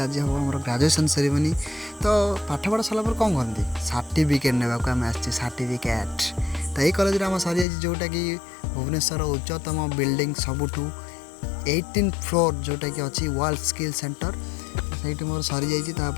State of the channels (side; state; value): right; drops out; at 7.7 s